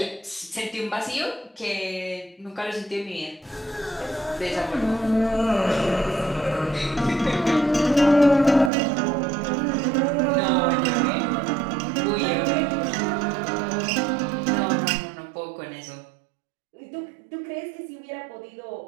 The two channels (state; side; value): drops out; left; at 8.7 s